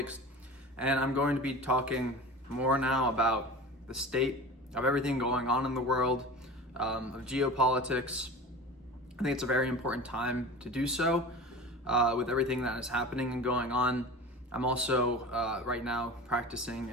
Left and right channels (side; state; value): both; normal; correlation 0.34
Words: and I'm going to be talking more now about the state of everything going on in the world, of geopolitics. I think it's a very important time to do so with everything that is happening and going on. I'm also right now practicing